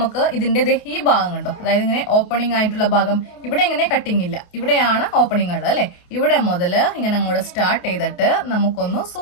ഇതിന്റെ ഈ ഭാഗം കണ്ടോ, അതായത് ഇങ്ങനെ ഓപ്പണിംഗ് ആയിട്ടുള്ള ഭാഗം, ഇവിടെ ഇങ്ങനെ കട്ടിങ് ഇല്ല, ഇവിടെയാണ് ഓപ്പണിംഗ് ഉള്ളത് അല്ലെ. ഇവിടെ മുതൽ ഇങ്ങനെ അങ്ങോട്ട് സ്റ്റാർട്ട് ചെയ്തിട്ട് നമുക്കൊന്ന്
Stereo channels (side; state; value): right; late; 28 ms